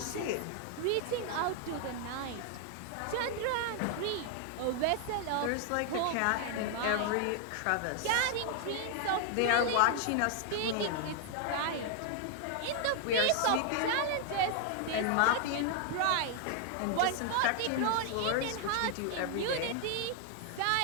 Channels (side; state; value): both; different; correlation 0.00